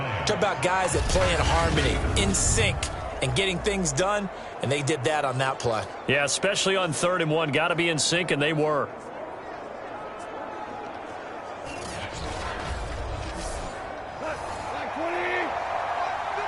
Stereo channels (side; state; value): both; identical; correlation 1.00